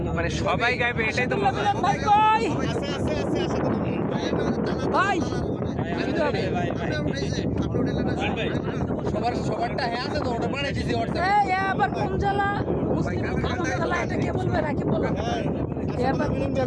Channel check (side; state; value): both; identical; correlation 1.00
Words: মানে সবাই গাইবে এটাই তো মিলন ভাই কই ভাই, সবারটা হ্যাঁ আছে তো ওটা বানাইছি আবার কোন জেলা মুসলিম জেলা, এটা কে বলবে রাখি বলো।